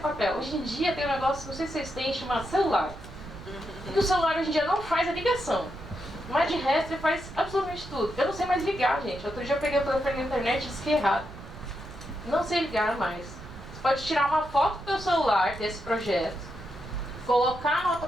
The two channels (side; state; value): right; noise; rumble, 15 dB below the sound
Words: Hoje em dia tem um negócio, não sei se vocês têm, chamado celular. E o celular hoje em dia não faz a ligação. Mas de resto ele faz absolutamente tudo. Eu não sei mais ligar, gente. Outro dia eu peguei o telefone na internet e disse que é errado. Não sei ligar mais. Você pode tirar uma foto do seu celular desse projeto, colocar no